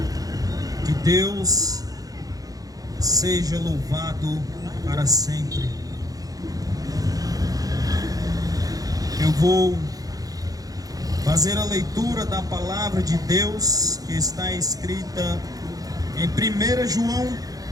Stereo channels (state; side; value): late; left; 0.18 ms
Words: Que Deus seja louvado para sempre. Eu vou fazer a leitura da palavra de Deus que está escrita em 1 João,